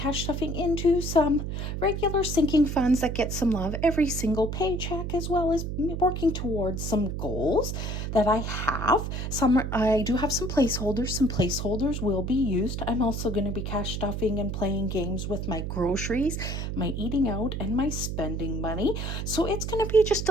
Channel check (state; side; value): noise; right; hum, 4 dB below the sound